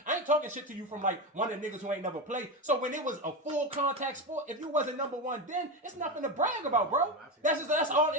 I ain't talking shit to you from like one of the niggas who ain't never played. So when it was a full contact sport, if you wasn't number one then, it's nothing to brag about, bro. That's all.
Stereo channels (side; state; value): both; normal; correlation 0.17